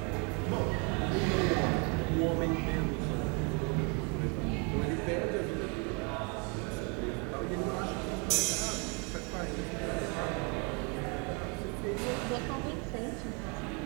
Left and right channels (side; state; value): left; quieter; 33.5 dB